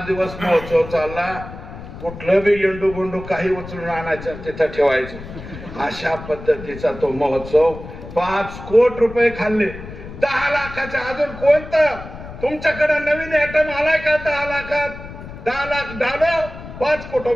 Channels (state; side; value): noise; left; rumble, 13 dB below the sound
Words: दिवस महोत्सव चालला. कुठलं बी येंडू गोंडू काही उचलून आणायचं, तिथं ठेवायचं, अशा पद्धतीचा तो महोत्सव. 5 कोटी रुपये खाल्ले 10 लाखाच्या. अजून कोणतं तुमच्याकडे नवीन आयटम आलाय का? 10 लाखात 10 लाख डालो, 5 कोटी